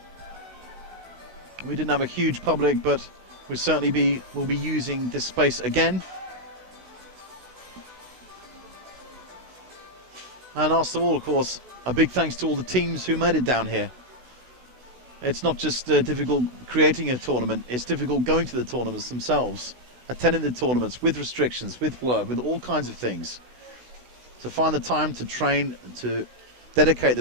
We didn't have a huge public, but we'll certainly will be using this space again. And last of all, of course, a big thanks to all the teams who made it down here. It's not just difficult creating a tournament, it's difficult going to the tournaments themselves, attending the tournaments with restrictions, with work, with all kinds of things. To find the time to train, to dedicate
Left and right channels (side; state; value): left; late; 16 ms